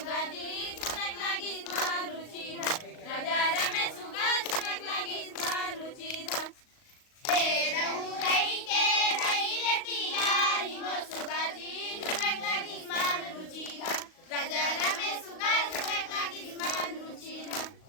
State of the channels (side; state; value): right; late; 38 ms